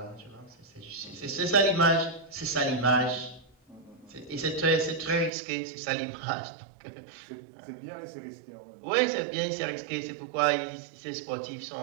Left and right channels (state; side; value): drops out; left; at 5.3 s